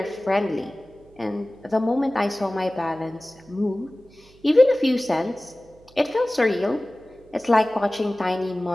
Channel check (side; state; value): right; noise; hum, 27 dB below the sound